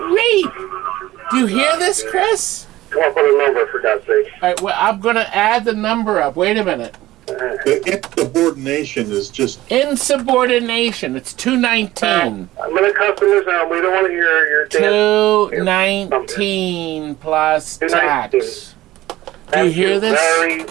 Do you hear this, Chris? Come up with a number, for God's sake. All right, well, I'm going to add the number up. Wait a minute. The insubordination is just... Insubordination. It's $219. I'm going to customers now. We don't want to hear your $219 plus tax. Do you hear this? Very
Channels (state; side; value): quieter; left; 16.3 dB